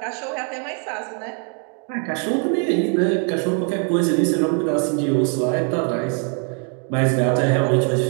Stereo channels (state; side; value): quieter; left; 39.4 dB